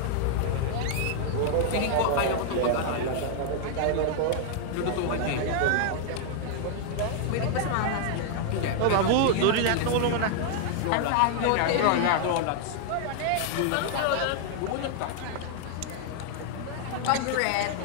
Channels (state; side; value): different; both; correlation 0.00